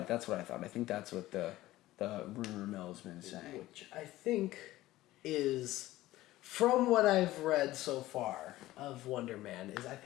I think that's what the rumor mill has been saying. Which I think is, from what I've read so far of Wonder Man,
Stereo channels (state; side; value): quieter; right; 16.4 dB